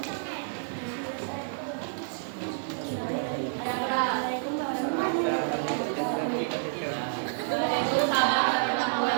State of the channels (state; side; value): silent; left; 59 dB below the other